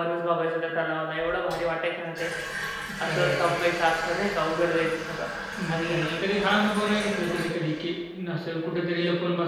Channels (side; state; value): both; identical; correlation 1.00